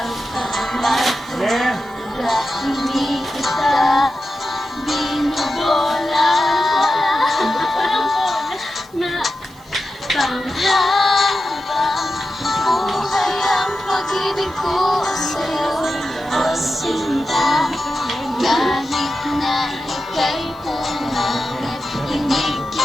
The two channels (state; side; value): noise; right; hiss, 27 dB below the sound